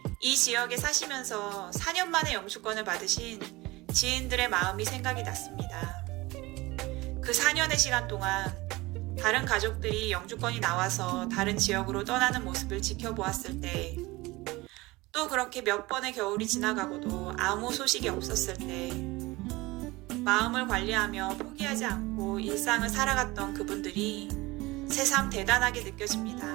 이 지역에 사시면서 4년 만에 영주권을 받으신 지인들의 마음이 생각이 났습니다. 그 4년의 시간 동안 다른 가족들이 영주권이 나와서 다른 지역으로 떠나는 모습을 지켜보았을 때, 또 그렇게 몇 번의 겨울이 지나가고도 아무 소식이 없었을 때, 마음을 관리하며 포기하지 않고 일상을 살아갔던 그분들이 새삼 대단하게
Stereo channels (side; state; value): left; quieter; 21.3 dB